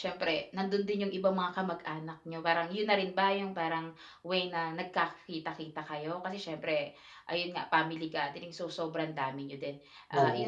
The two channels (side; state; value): both; identical; correlation 1.00